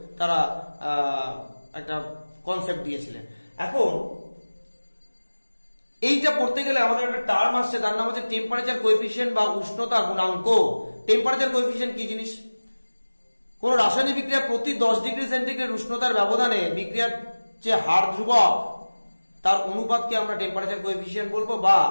তারা একটা কনসেপ্ট দিয়েছিলেন। এখন এইটা পড়তে গেলে আমাদের একটা টার্ম আসছে, তার নাম হচ্ছে টেম্পারেচার কোএফিসিয়েন্ট বা উষ্ণতা গুণাঙ্ক। টেম্পারেচার কোএফিসিয়েন্ট কি জিনিস? কোন রাসায়নিক বিক্রিয়া প্রতি 10 ডিগ্রি সেন্টিগ্রেড উষ্ণতার ব্যবধানে বিক্রিয়ার যে হার ধ্রুবক তার অনুপাতকে আমরা টেম্পারেচার কোএফিসিয়েন্ট বলবো বা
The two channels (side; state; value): both; inverted; correlation -1.00